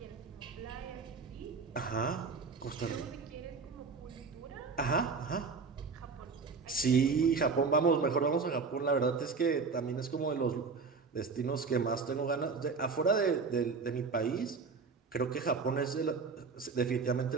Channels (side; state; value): left; quieter; 4.8 dB